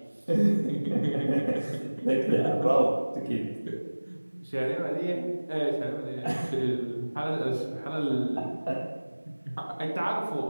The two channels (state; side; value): inverted; both; correlation -1.00